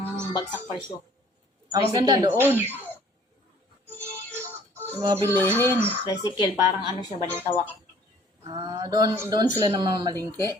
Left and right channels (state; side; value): normal; both; correlation 0.56